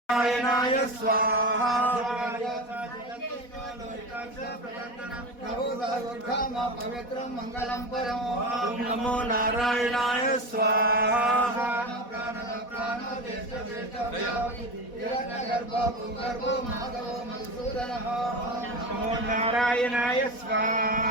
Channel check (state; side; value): late; right; 4.1 ms